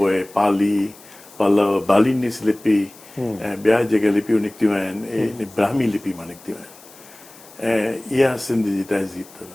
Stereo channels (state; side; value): noise; left; hiss, 22 dB below the sound